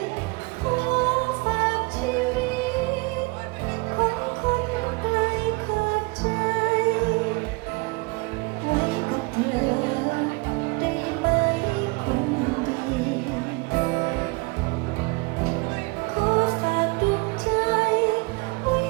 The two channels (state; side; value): quieter; left; 27.0 dB